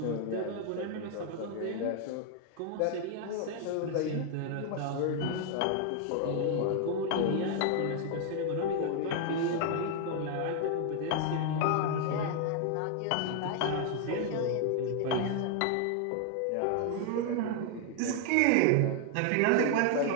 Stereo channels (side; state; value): both; different; correlation 0.00